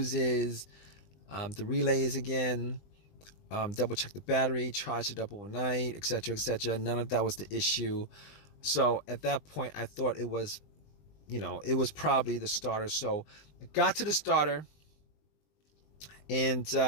the relays again, double checked the battery, charged it up overnight, etc., etc. None of that was the issue. So at that point, I thought it was, it was probably the starter. So I got to the starter and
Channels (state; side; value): late; right; 20 ms